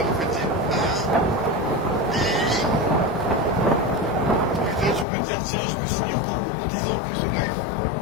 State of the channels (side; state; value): right; drops out; at 5.1 s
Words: meuf elle dit. Putain, tu peux te dire, tiens, je me suis mis encore en 10 ans plus au life.